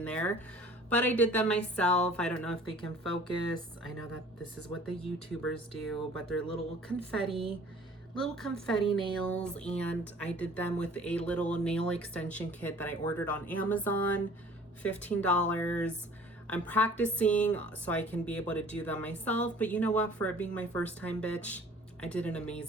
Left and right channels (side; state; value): both; normal; correlation 0.50